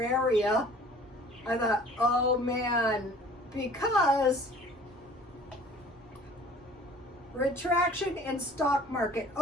area. I thought, oh man, because retraction in stock market.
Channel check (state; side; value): normal; both; correlation 0.50